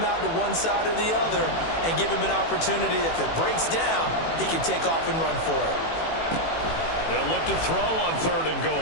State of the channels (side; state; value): right; late; 18 ms